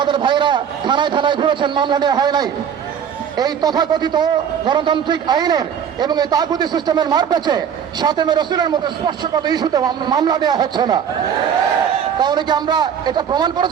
ভাইরা থানায় থানায় ঘুরেছেন, মামলা নেওয়া হয় নাই। এই তথাকথিত গণতান্ত্রিক আইনের এবং এই তাগুতি সিস্টেমের মারপ্যাচে সাতমে রাসূলের মধ্যে স্পর্শগত ইস্যুতে মামলা দেওয়া হচ্ছে না। তাহলে কি আমরা এটা প্রমাণ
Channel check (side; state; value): left; quieter; 8.1 dB